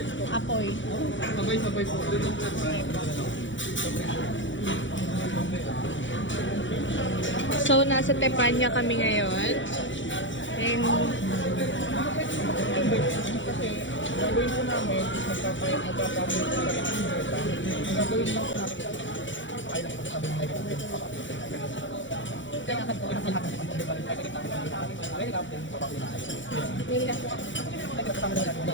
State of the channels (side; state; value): right; late; 0.55 ms